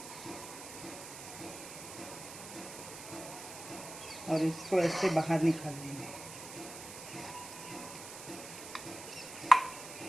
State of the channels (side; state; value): right; noise; hiss, 11 dB below the sound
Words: और इसको ऐसे बाहर निकाल लेंगे।